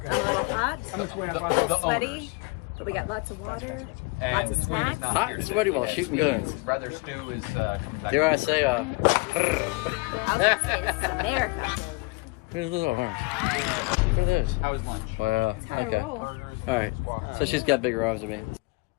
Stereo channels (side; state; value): right; quieter; 27.8 dB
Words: I'm a little hot, a little sweaty, owners. but we got lots of water, And lots of the twin is snacks. not Hot here and today. sweaty while His- shooting guns. His brother Stu is coming back. Dare I say, I was gonna say, this is America. here's a little arms. Look at this. How was lunch? Wow. Okay. All right. So she's got bigger arms than me.